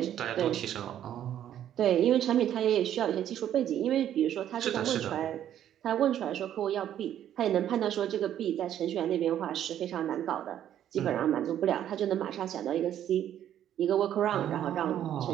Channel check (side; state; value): left; quieter; 10.8 dB